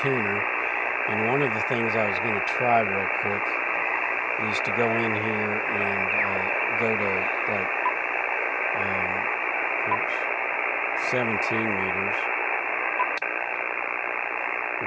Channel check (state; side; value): identical; both; correlation 1.00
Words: and one of the things I was going to try real quick is to go in here and go to like 17 meters,